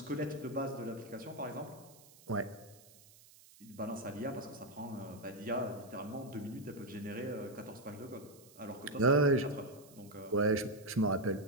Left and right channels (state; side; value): noise; right; hiss, 23 dB below the sound